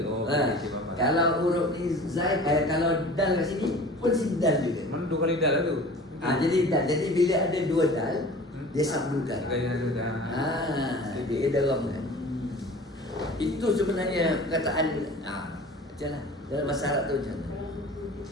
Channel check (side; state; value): both; normal; correlation 0.42